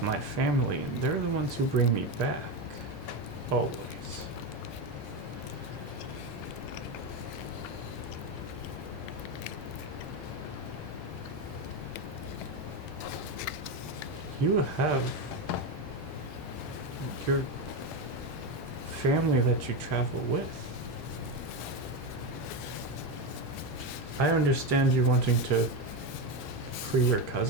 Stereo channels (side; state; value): right; late; 2.9 ms